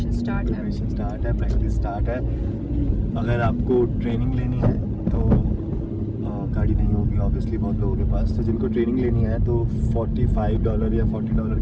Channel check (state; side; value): identical; both; correlation 1.00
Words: start है। प्रिपरेशन स्टार्ट है, प्रैक्टिस स्टार्ट है। अगर आपको ट्रेनिंग लेनी है तो गाड़ी नहीं होगी ऑब्वियसली बहुत लोगों के पास, तो जिनको ट्रेनिंग लेनी है तो $45 या $40